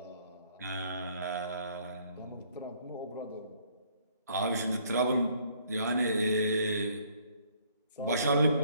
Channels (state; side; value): inverted; both; correlation -0.63